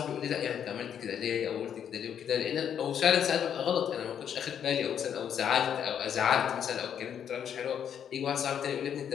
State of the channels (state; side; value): quieter; right; 8.7 dB